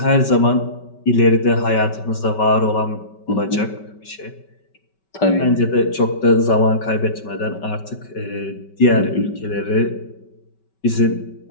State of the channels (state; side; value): late; right; 5.2 ms